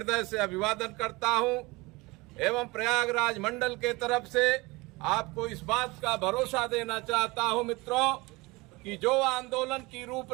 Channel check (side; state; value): left; quieter; 23.4 dB